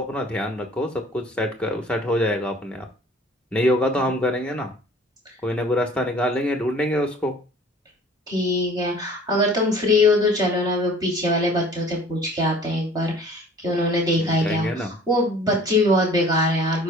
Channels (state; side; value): normal; both; correlation 0.50